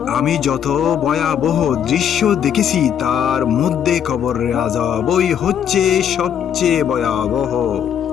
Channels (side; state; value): right; quieter; 8.9 dB